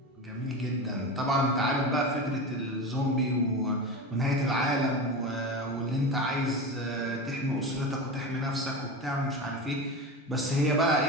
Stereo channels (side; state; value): both; normal; correlation 0.25